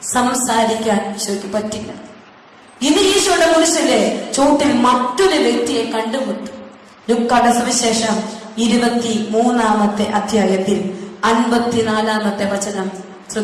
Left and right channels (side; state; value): both; identical; correlation 1.00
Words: സംസാരിക്കാൻ ഈശോയ്ക്ക് പറ്റില്ല. ഇത് ഈശോയുടെ കുരിശിലെ ചൂട്ടിൽ മറ്റൊരു വ്യക്തിയെ കണ്ടുമുട്ടും. ലൂക്കായുടെ സുവിശേഷം 23-ാമത്തെ അധ്യായത്തിൽ 54-ാമത്തെ വചനം